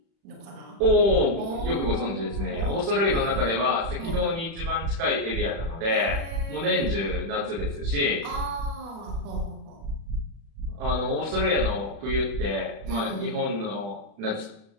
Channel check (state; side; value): late; left; 36 ms